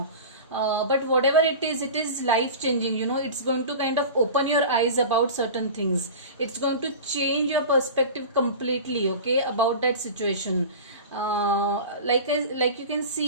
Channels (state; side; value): inverted; both; correlation -0.33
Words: But whatever it is life changing. It's going to kind of open your eyes about certain things. It's going to change your perspective completely, okay, about that situation. Like you can